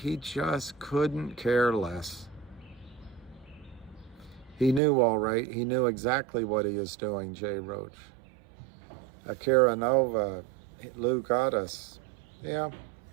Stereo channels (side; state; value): left; drops out; at 4.8 s